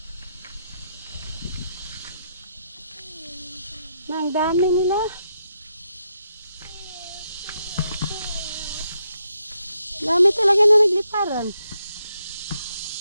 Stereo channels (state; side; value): inverted; both; correlation -0.80